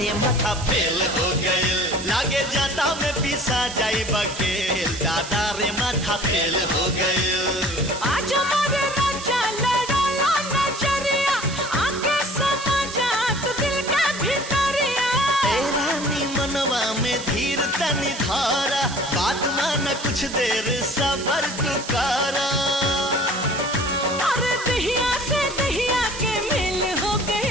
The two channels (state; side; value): noise; right; hiss, 11 dB below the sound